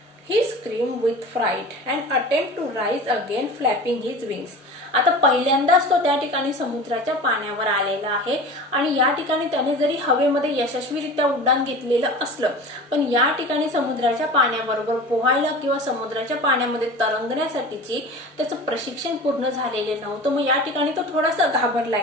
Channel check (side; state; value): both; normal; correlation 0.35